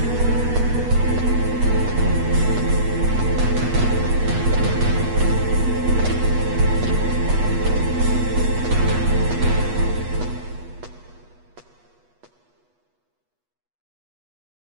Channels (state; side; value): late; left; 8.3 ms